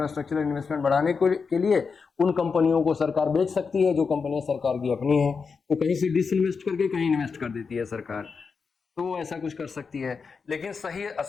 इन्वेस्टमेंट बढ़ाने के लिए उन कंपनियों को सरकार बेच सकती है जो कंपनियां सरकार की अपनी है। तो कहीं से डिसइन्वेस्ट करके कहीं इन्वेस्ट कर देती है सरकार, तो वो ऐसा कुछ कर सकती है। लेकिन सही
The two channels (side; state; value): right; quieter; 5.3 dB